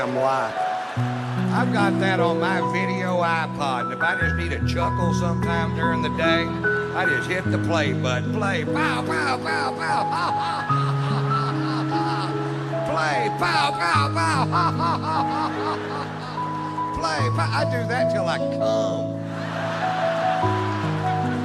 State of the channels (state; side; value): identical; both; correlation 1.00